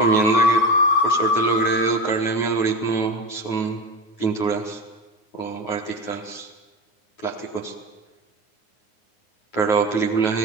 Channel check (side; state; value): right; late; 9.4 ms